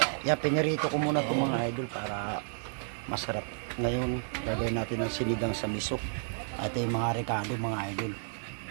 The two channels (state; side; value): silent; left; 57 dB below the other